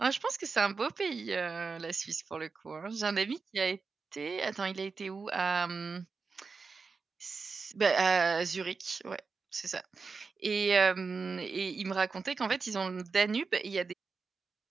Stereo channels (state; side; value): quieter; left; 4.7 dB